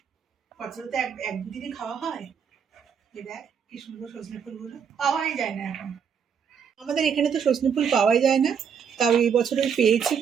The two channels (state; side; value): quieter; left; 7.2 dB